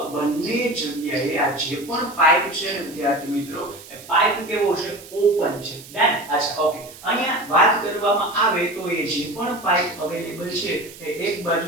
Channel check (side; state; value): right; noise; hiss, 18 dB below the sound